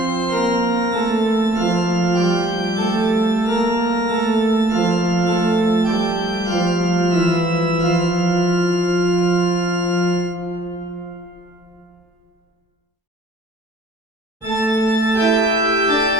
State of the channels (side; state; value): both; normal; correlation 0.54